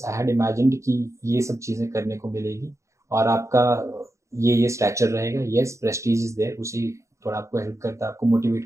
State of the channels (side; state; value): left; late; 0.14 ms